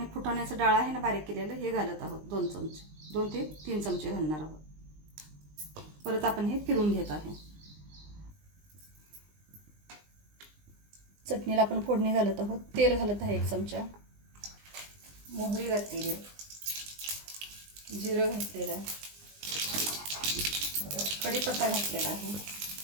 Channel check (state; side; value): late; left; 20 ms